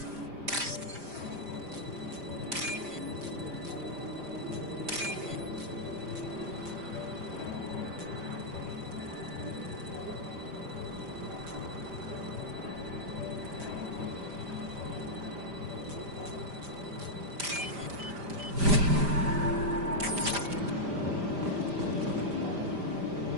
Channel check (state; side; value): late; left; 5.0 ms